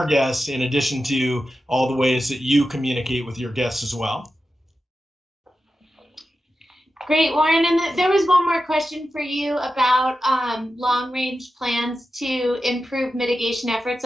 guests, in addition to all the ways that you communicate with your guests as well. Great, Warren. And there was one more question for you about long-range plans to improve mitigation efforts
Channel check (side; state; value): both; normal; correlation 0.91